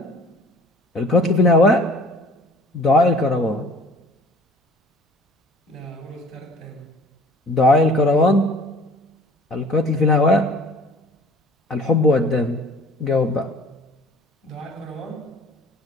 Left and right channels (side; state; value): both; normal; correlation 0.50